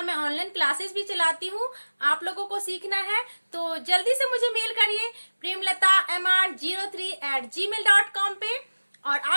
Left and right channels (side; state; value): both; inverted; correlation -1.00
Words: मैं ऑनलाइन क्लासेस भी चलाती हूँ। आप लोगों को सीखना है तो जल्दी से मुझे मेल करिए premlata03@gmail.com पे, और